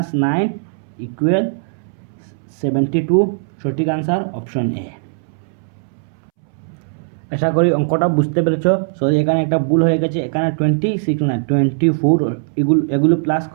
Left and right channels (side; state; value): left; silent; 67 dB below the other